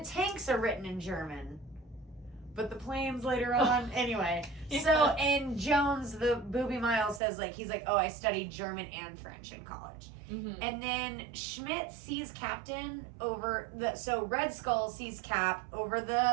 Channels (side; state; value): left; drops out; at 7.2 s